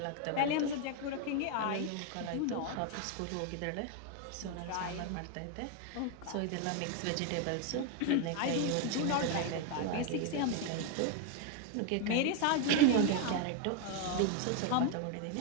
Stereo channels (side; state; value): both; different; correlation 0.01